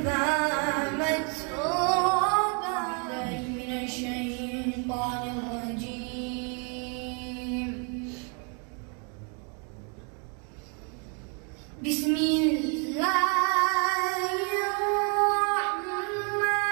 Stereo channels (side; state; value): left; quieter; 38.1 dB